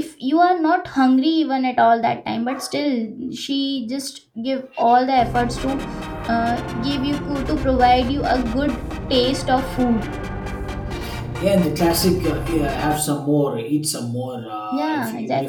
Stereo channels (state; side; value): identical; both; correlation 1.00